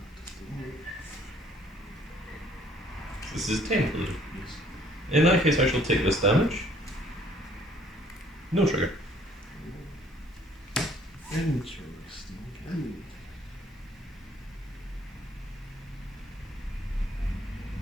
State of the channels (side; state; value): both; normal; correlation 0.60